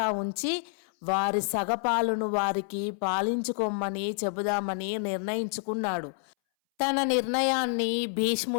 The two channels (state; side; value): silent; right; 59 dB below the other